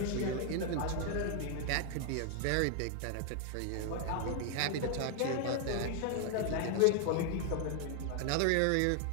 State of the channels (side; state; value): both; different; correlation 0.00